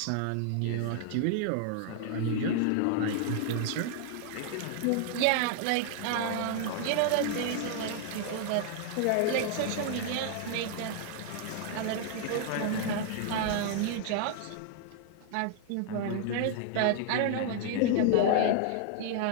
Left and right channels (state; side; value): different; both; correlation 0.00